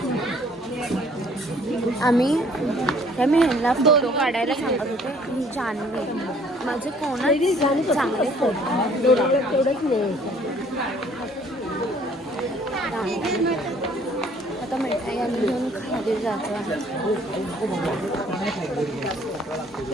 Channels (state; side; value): normal; both; correlation 0.58